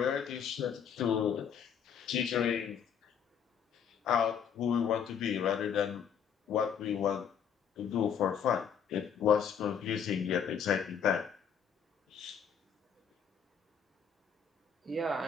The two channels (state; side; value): quieter; right; 7.5 dB